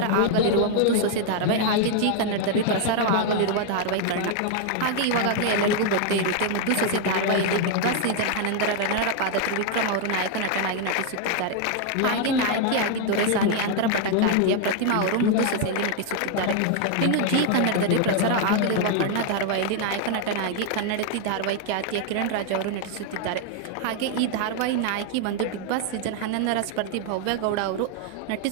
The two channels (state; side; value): different; both; correlation 0.00